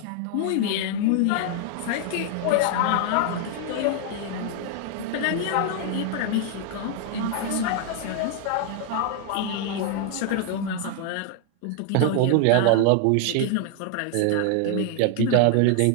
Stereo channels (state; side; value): different; both; correlation 0.00